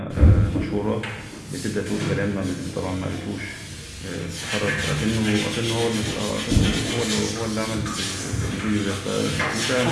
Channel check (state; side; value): identical; both; correlation 1.00